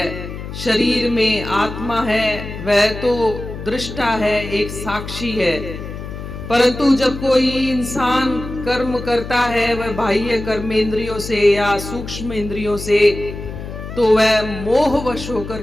शरीर में आत्मा है, वह तो दृष्टा है, एक साक्षी है, परंतु जब कोई इंसान कर्म करता है वह बाह्य कर्मेंद्रियों से या सूक्ष्म इंद्रियों से, तो वह मोहवश होकर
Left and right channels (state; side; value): noise; left; hum, 9 dB below the sound